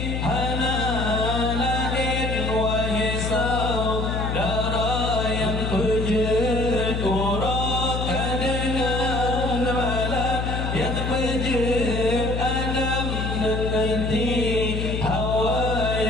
hana lahir wahai saudara yang pejat urakan dengan malam yang pejat Adam dengan Hawa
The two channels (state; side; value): noise; left; hum, 2 dB below the sound